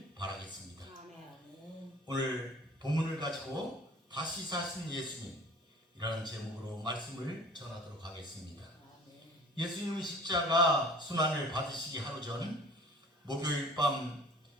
바라겠습니다. 오늘 본문을 가지고 다시 사신 예수님이라는 제목으로 말씀을 전하도록 하겠습니다. 예수님의 십자가 순환을 받으시기 하루 전 목요일 밤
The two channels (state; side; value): normal; both; correlation 0.47